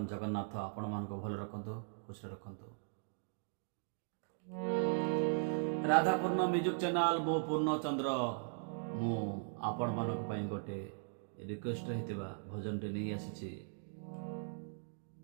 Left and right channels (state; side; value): silent; left; digital silence